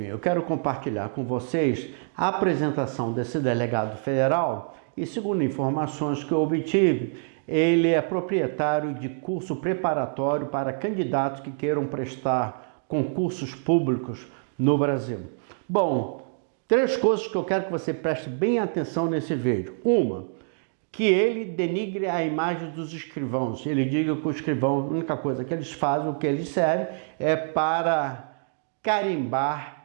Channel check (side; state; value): left; silent; digital silence